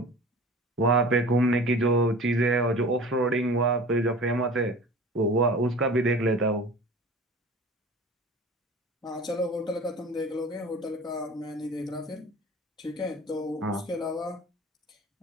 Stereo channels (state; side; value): normal; both; correlation 0.40